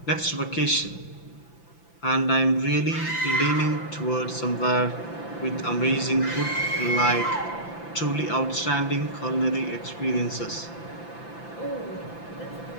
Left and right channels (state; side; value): late; right; 5.9 ms